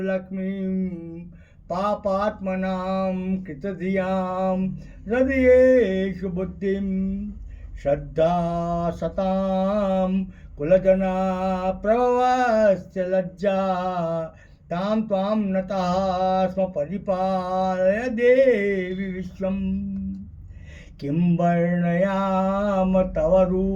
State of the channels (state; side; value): identical; both; correlation 1.00